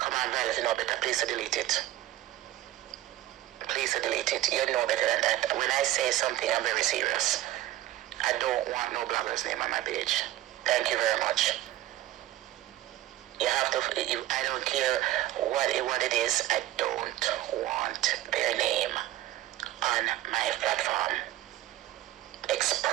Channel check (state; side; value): quieter; left; 14.9 dB